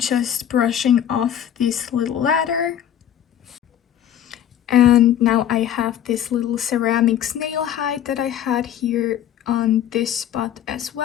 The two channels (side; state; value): right; quieter; 10.3 dB